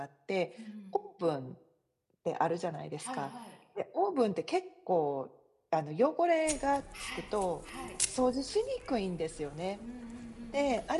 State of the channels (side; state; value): both; identical; correlation 1.00